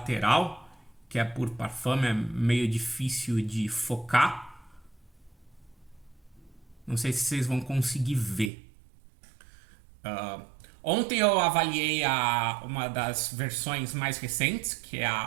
que é Pour Parfum, é meio difícil de focar. Não sei se vocês vão conseguir ver. Ontem eu avaliei uma das versões mais recentes, que é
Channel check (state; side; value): drops out; left; at 8.5 s